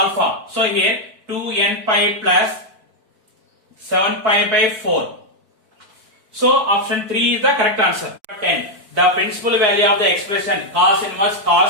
So here 2n pi plus 7 pi by 4. So option 3 is the correct answer. 10. The principal value of the expression cos inverse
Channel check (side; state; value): left; late; 4.5 ms